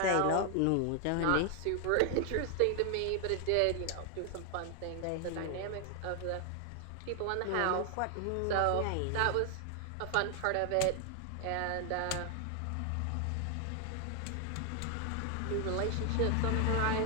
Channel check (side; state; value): both; different; correlation 0.00